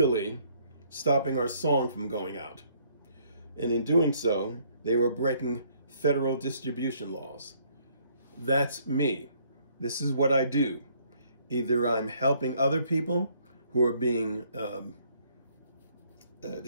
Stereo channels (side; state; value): both; inverted; correlation -0.65